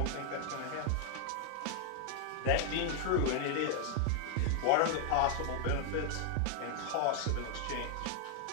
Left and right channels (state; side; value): different; both; correlation 0.00